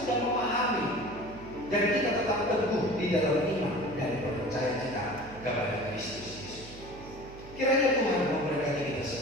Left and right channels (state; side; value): noise; right; hum, 17 dB below the sound